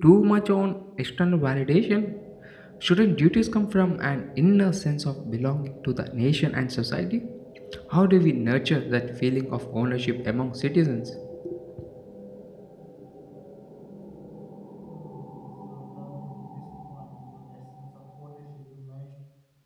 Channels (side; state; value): both; identical; correlation 1.00